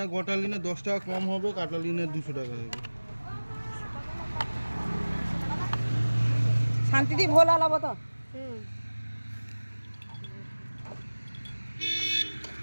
গোটা লিনে 10 টাকা কম হবে, কাটা লিনে 200 টাকা হবে। শান্তিতে ভোলা লাভ তো।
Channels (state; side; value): inverted; both; correlation -1.00